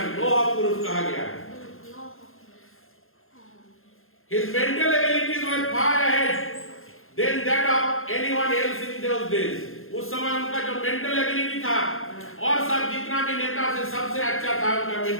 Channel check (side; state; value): right; late; 0.60 ms